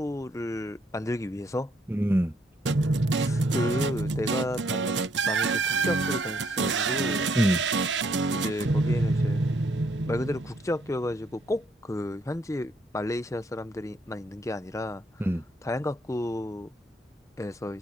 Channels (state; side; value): normal; both; correlation 0.70